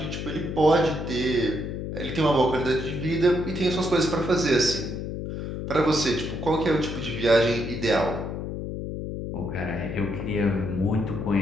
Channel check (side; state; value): left; noise; hum, 5 dB below the sound